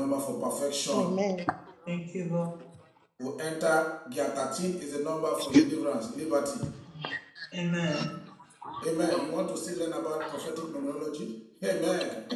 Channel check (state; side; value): identical; both; correlation 1.00